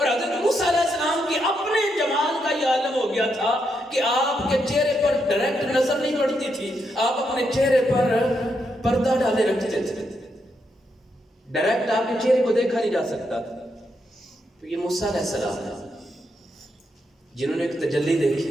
حضرت موسیٰ علیہ السلام کی اپنے جمال کا یہ عالم ہو گیا تھا کہ آپ کے چہرے پر ڈائریکٹ نظر نہیں پڑتی تھی، آپ اپنے چہرے پر پردہ ڈالے رکھتے تھے، ڈائریکٹ آپ کے چہرے کو دیکھا نہیں جا سکتا تھا۔ تو یہ موسیٰ علیہ السلام ہے جنہوں نے ایک تجلی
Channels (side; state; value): both; normal; correlation 0.80